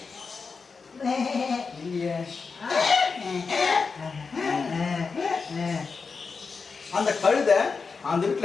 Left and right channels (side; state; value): right; quieter; 4.9 dB